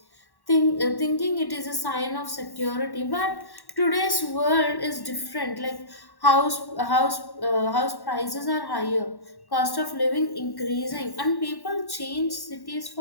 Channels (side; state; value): right; late; 1.1 ms